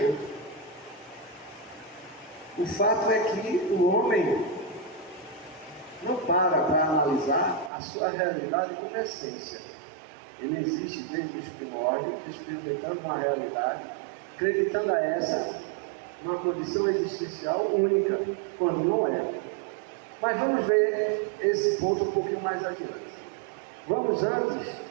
outro. O fato é que o homem não para analisar a sua realidade como essência. Ele existe desde os primórdios, experimentando uma realidade, acreditando a essa uma condição existencial única, quando não é. Mas vamos ver esse ponto um pouquinho mais adiante. Vamos antes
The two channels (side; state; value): left; drops out; at 7.7 s